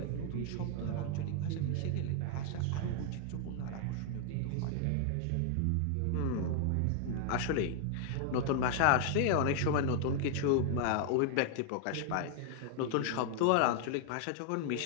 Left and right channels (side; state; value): both; different; correlation 0.00